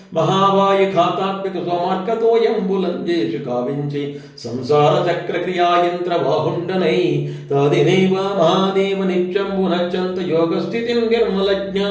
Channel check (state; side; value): identical; both; correlation 1.00